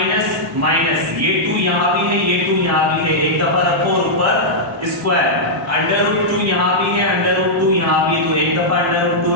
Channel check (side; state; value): both; normal; correlation -0.08